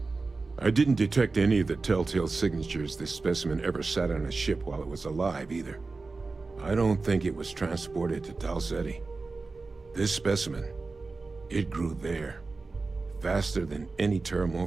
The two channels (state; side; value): quieter; left; 3.8 dB